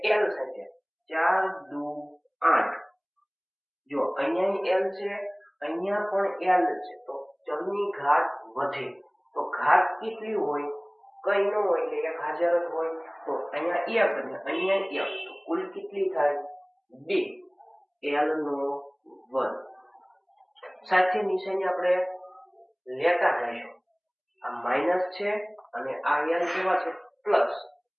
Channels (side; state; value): both; identical; correlation 1.00